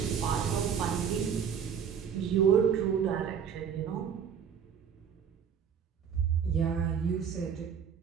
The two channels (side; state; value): left; quieter; 7.5 dB